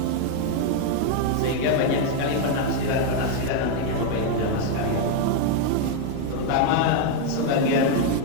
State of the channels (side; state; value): both; different; correlation 0.01